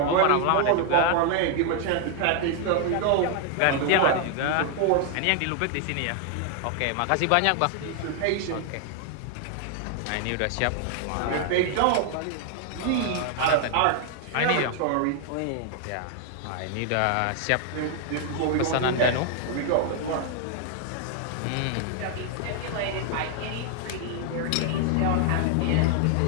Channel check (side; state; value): both; different; correlation 0.00